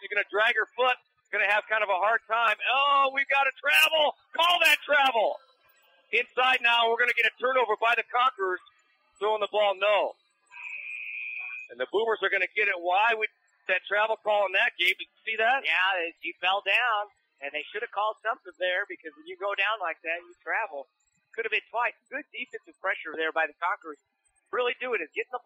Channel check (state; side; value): identical; both; correlation 1.00